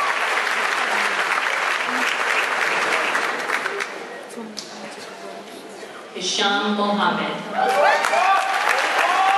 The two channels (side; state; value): both; identical; correlation 1.00